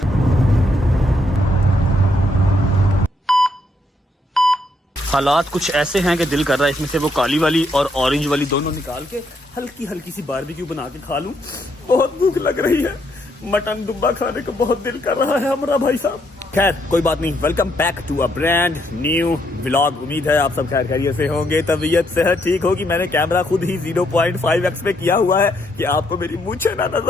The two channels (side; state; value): both; normal; correlation 0.74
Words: हालात कुछ ऐसे हैं कि दिल कर रहा है इसमें से वो काली वाली और ऑरेंज वाली दोनों निकाल के हल्की हल्की सी बारबेक्यू बना के खा लूं। बहुत भूख लग रही है, मटन दुब्बा खाने को बहुत दिल कर रहा है हमारा भाई साहब। खैर कोई बात नहीं, welcome back to a brand new vlog. उम्मीद है आप सब खैर खैरियत से होंगे, तबीयत सेहत ठीक होगी। मैंने कैमरा खुद ही 0.5x पे किया हुआ है कि आपको मेरी मूंछें ना